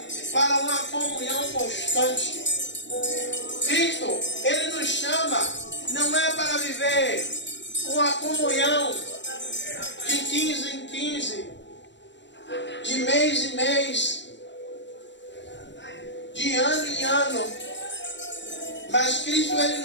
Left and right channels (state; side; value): late; right; 0.52 ms